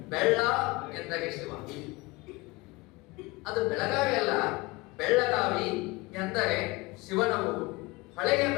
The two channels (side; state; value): right; quieter; 23.2 dB